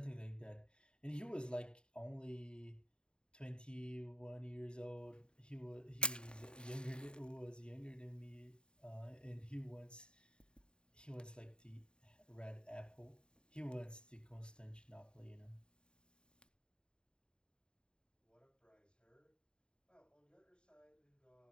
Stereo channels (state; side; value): late; right; 0.049 ms